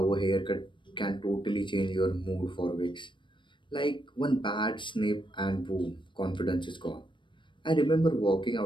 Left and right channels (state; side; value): late; right; 0.23 ms